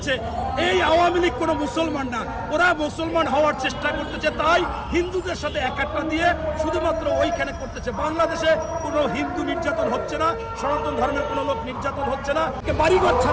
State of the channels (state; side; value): identical; both; correlation 1.00